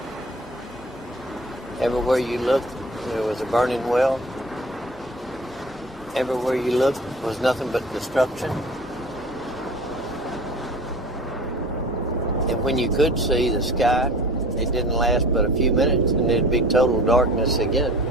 Everywhere you looked, there was a burning well. Everywhere you looked was nothing but destruction. And when you could see the sky, it didn't last but a few minutes, and it'd be total darkness again.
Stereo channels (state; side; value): normal; both; correlation 0.42